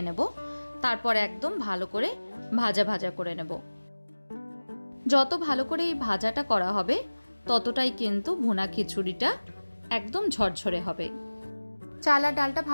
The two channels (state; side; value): inverted; both; correlation -1.00